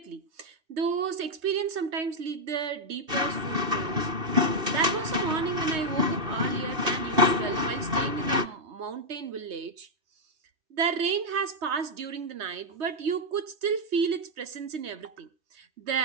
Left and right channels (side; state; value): left; late; 2.7 ms